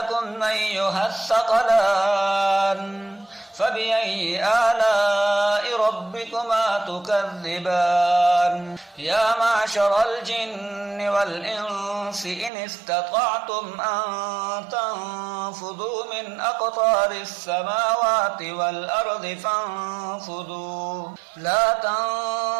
أيها الثقلان فبأي آلاء ربكما تكذبان يا معشر الجن والإنس إن استطعتم أن تنفذوا من أقطار السماوات والأرض فانفذوا لا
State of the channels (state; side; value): drops out; left; at 12.5 s